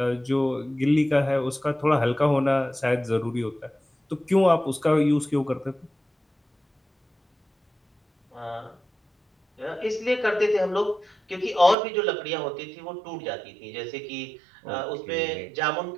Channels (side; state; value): left; drops out; at 11.8 s